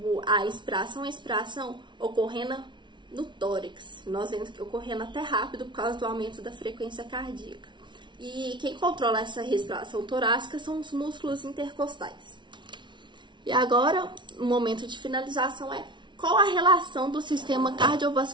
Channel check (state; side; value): late; left; 0.23 ms